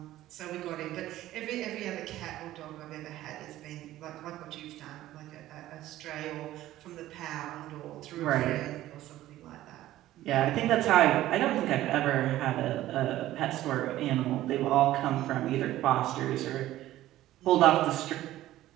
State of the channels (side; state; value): left; quieter; 14.7 dB